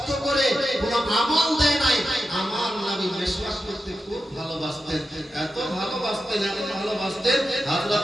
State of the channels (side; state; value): both; normal; correlation 0.90